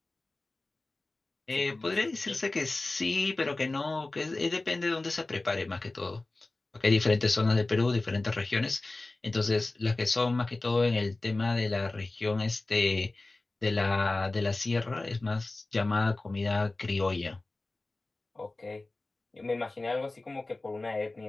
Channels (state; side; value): quieter; right; 3.1 dB